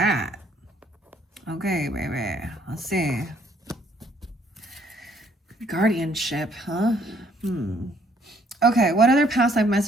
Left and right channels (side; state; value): both; normal; correlation 0.65